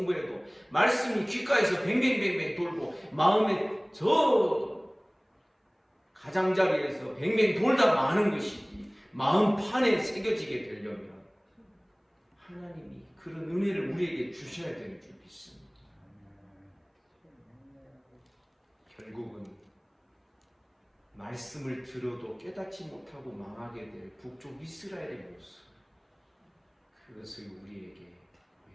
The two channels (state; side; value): identical; both; correlation 1.00